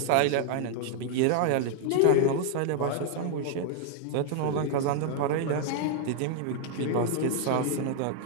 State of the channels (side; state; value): both; different; correlation 0.00